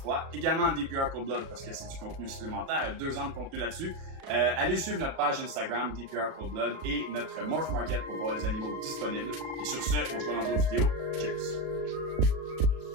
également DPR Cold Blood parce que c'est du contenu supplémentaire, 2 ans de contenu là-dessus. Allez suivre notre page Instagram DPR Cold Blood et notre Morph Market pour voir les animaux disponibles. Et sur ce, on se voit dans d'autres vidéos. Cheers!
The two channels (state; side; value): late; left; 37 ms